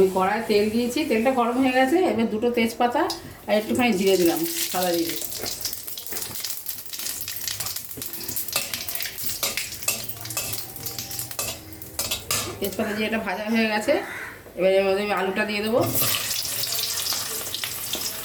কড়ায় তেল দিয়েছি, তেলটা গরম হয়ে গেছে। এবার দুটো তেজপাতা আর একটুখানি জিরে দিলাম, সাদা জিরে। তেজপাতা জিরেটা ভাজা হয়ে গেছে। এবার এর মধ্যে আমি আলুটা দিয়ে দেবো।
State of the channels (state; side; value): identical; both; correlation 1.00